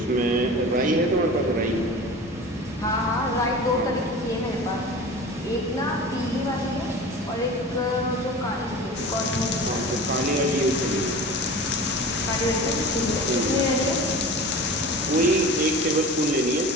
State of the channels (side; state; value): both; normal; correlation 0.35